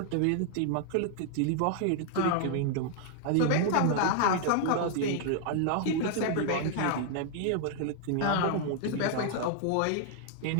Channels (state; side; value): different; both; correlation 0.00